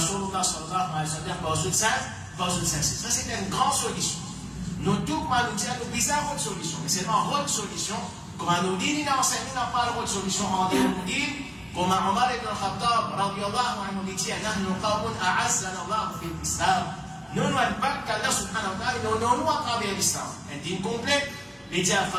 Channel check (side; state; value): both; identical; correlation 1.00